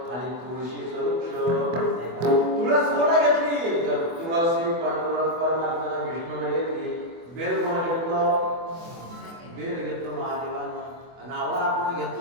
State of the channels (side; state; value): left; late; 24 ms